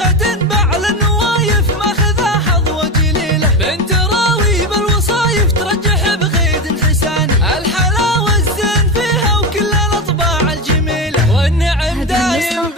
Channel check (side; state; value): both; normal; correlation 0.19